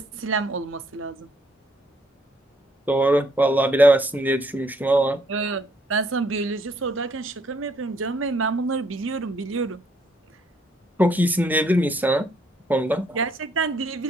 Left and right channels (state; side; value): normal; both; correlation 0.68